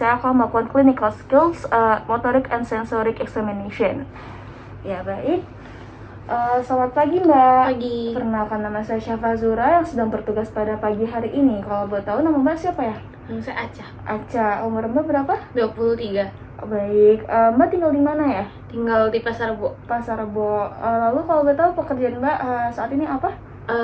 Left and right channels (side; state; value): both; identical; correlation 1.00